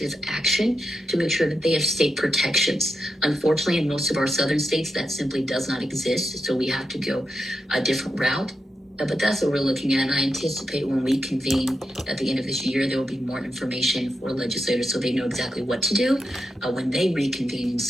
action to make sure that they have state protections. Unfortunately, in most of our southern states, that simply does not exist. So we have to go a different route. But that's what we're looking at. And I anticipate when we convene at the end of this year, there will be more information for legislators so they know exactly what to do when they reconvene in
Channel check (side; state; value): both; normal; correlation 0.87